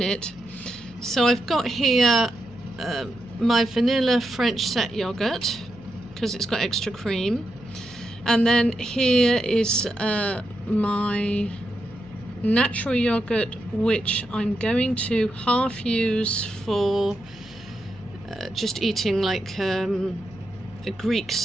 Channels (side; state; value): left; noise; hum, 23 dB below the sound